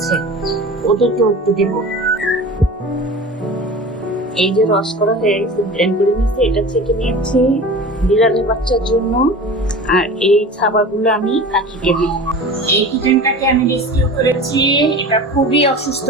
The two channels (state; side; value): normal; both; correlation 0.36